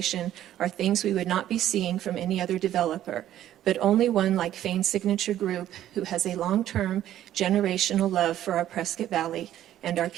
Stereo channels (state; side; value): quieter; left; 12.2 dB